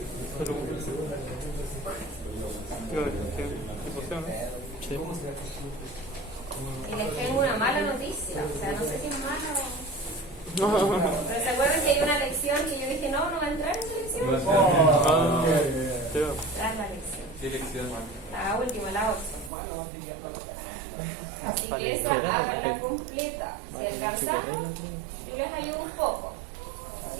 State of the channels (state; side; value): drops out; left; at 19.5 s